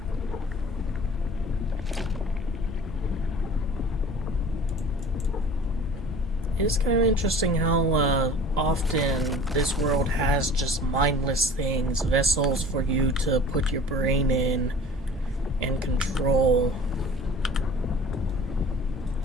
It's kind of interesting how often this world has just mindless things, vessels for you to put your brain in and control.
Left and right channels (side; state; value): both; normal; correlation 0.45